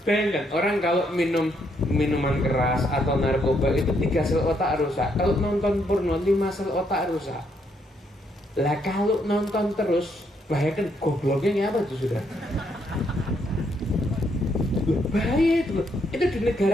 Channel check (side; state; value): both; normal; correlation 0.74